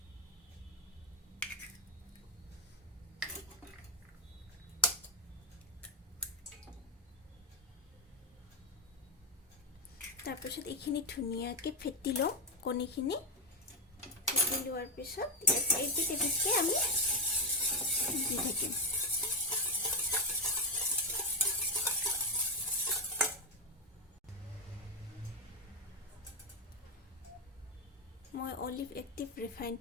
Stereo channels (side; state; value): both; normal; correlation 0.07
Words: তাৰপিছত এইখিনি ধুনীয়াকৈ ফেটি লওঁ কণীখিনি ফেটি লোৱাৰ পিছত এবিধ এবিধকৈ আমি দি থাকিম মই অলিভ এক্টিভ